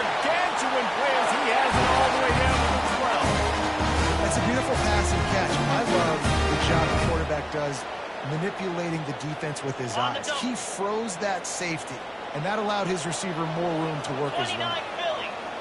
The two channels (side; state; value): both; identical; correlation 1.00